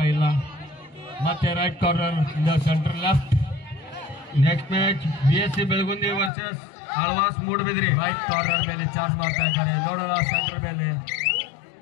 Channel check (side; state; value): right; drops out; at 6.3 s